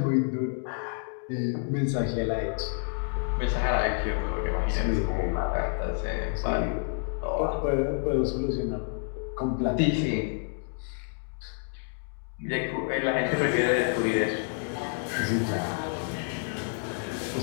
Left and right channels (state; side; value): silent; right; 59 dB below the other